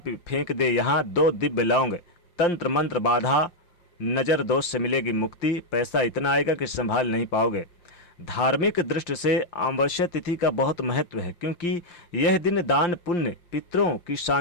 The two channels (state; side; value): late; right; 5.8 ms